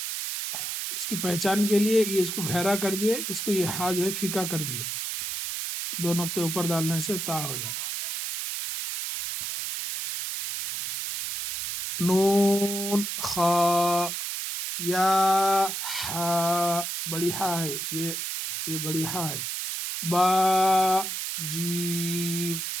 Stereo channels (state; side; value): noise; right; hiss, 3 dB below the sound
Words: اس کی پہچان کے لیے یہ اس کو گہرا کر دیے، اس کو یہ ہا جو ہے پھیکا کر دیے. دو نقطے اوپر ڈالنے سے تا ہو جاتا. نون خا، یا ہا، بڑی ہا ہے، یہ بڑی ہا ہے. با جیم،